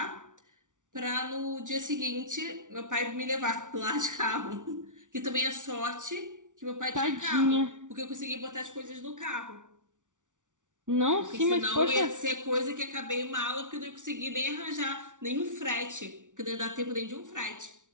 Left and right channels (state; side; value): late; left; 0.87 ms